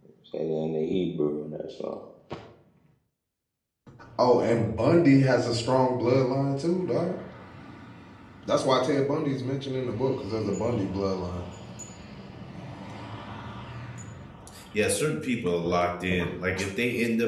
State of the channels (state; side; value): identical; both; correlation 1.00